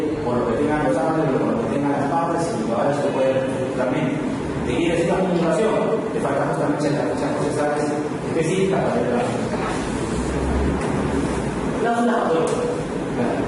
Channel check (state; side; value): identical; both; correlation 1.00